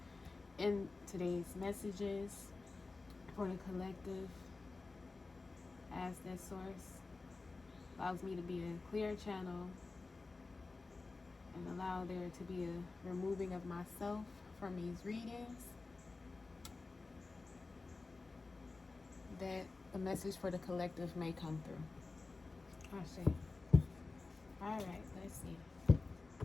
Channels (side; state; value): right; quieter; 3.7 dB